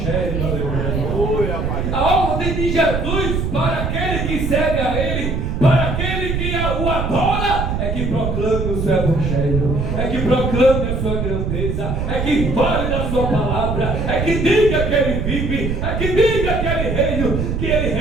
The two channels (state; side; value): noise; right; rumble, 1 dB below the sound